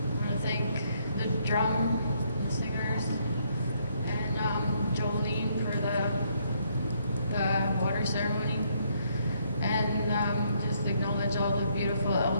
want to thank the drum singers and Jolene for the water ceremony, and just acknowledge all the beautiful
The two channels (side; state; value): both; inverted; correlation -0.71